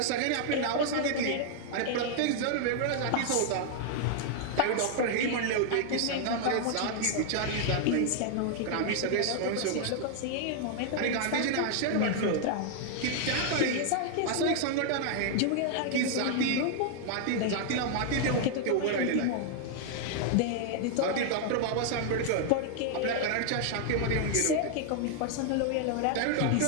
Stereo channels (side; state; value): both; different; correlation -0.01